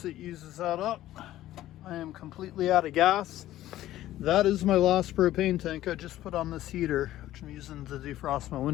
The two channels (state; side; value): quieter; right; 14.2 dB